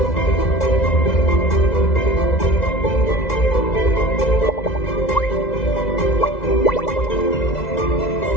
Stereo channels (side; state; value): right; late; 2.0 ms